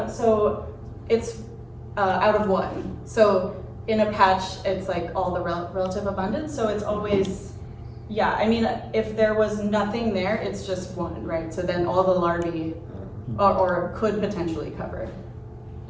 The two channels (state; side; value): identical; both; correlation 1.00